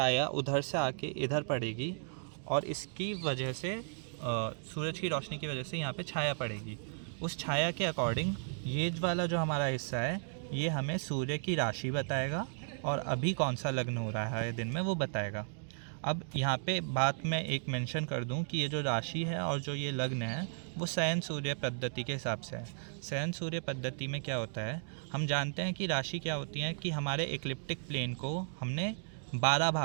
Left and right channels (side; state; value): left; silent; digital silence